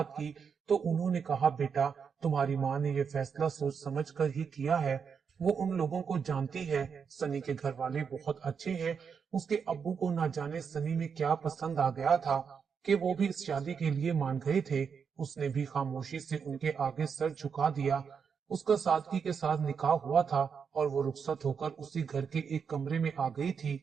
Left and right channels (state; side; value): quieter; left; 6.4 dB